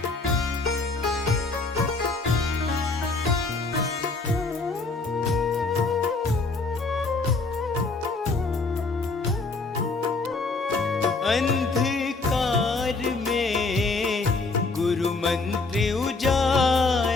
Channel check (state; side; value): quieter; right; 3.8 dB